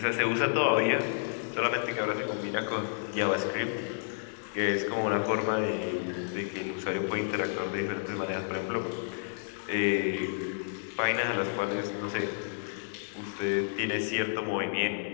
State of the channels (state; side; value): silent; right; 57 dB below the other